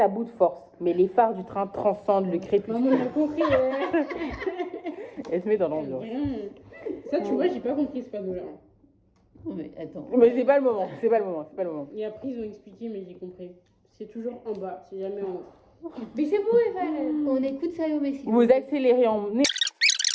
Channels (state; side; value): identical; both; correlation 1.00